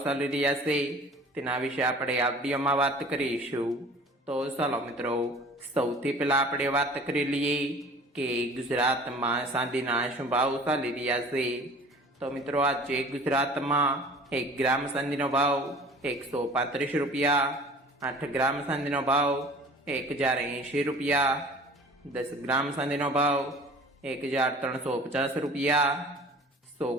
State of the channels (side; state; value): both; normal; correlation 0.46